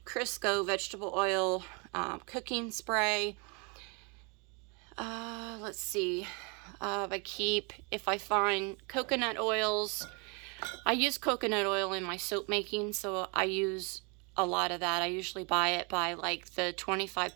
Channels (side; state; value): left; quieter; 32.2 dB